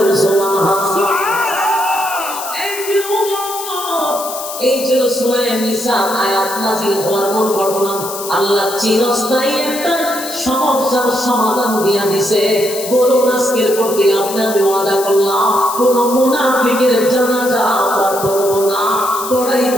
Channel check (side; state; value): left; noise; hiss, 9 dB below the sound